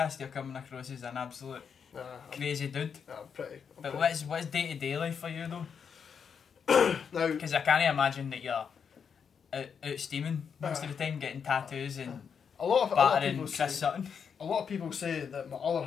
you're coming across as an absolute crazy dude. I'm pretty. What's day-to-day life for you though? Now, because I can't imagine that you're out steaming most of the time, getting tattoos and a lot of Chris Sutton. A lot of people say that my other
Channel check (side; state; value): right; quieter; 6.8 dB